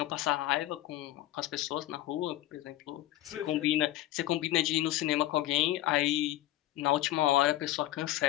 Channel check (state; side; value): quieter; right; 14.9 dB